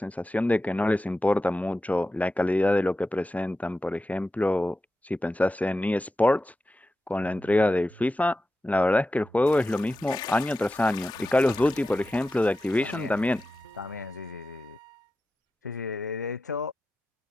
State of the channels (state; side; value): normal; both; correlation 0.92